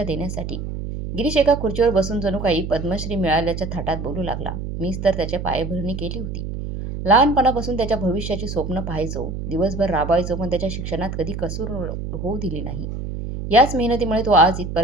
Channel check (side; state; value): right; noise; hum, 6 dB below the sound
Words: देण्यासाठी. गिरीश एका खुर्चीवर बसून जणू काही पद्मश्री मिळाल्याच्या थाटात बोलू लागला. मीच तर त्याच्या पायभरणी केली होती. लहानपणापासून त्याच्या भविष्याची स्वप्न पाहायचो, दिवसभर राबायचो, पण त्याच्या शिक्षणात कधी कसूर होऊ दिली नाही. याच मेहनतीमुळे तो आज